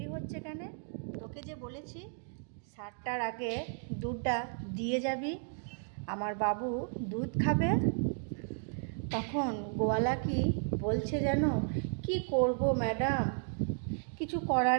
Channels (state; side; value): silent; left; 55 dB below the other